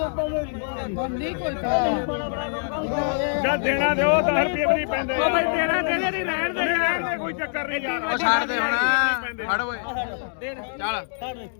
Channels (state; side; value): silent; right; digital silence